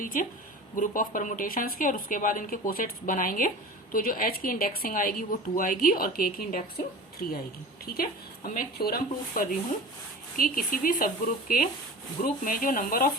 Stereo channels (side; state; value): both; normal; correlation 0.36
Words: ग्रुप ऑफ परमुटेशंस के, और उसके बाद इनके कोसेट्स बनाएंगे तो जो H की इंडेक्सिंग आएगी वो 2 आएगी और K की इंडेक्सिंग 3 आएगी। ठीक है, अब मैं एक थ्योरम प्रूफ कर रही हूँ कि किसी भी सब ग्रुप के ग्रुप में जो नंबर